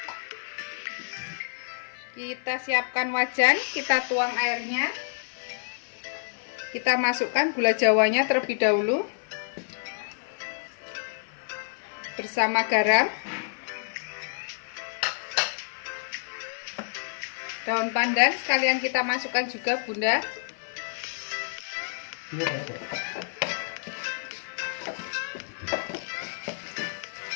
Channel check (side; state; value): right; silent; 56 dB below the other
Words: Kita siapkan wajan, kita tuang airnya. Kita masukkan gula jawanya terlebih dahulu bersama garam. Daun pandan sekalian kita masukkan juga Bunda.